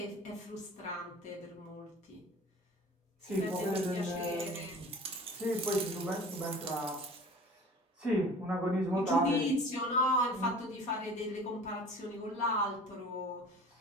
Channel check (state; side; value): normal; both; correlation 0.43